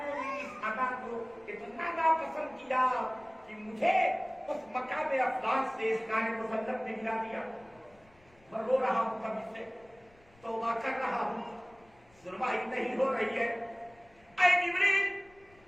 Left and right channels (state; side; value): noise; left; rumble, 29 dB below the sound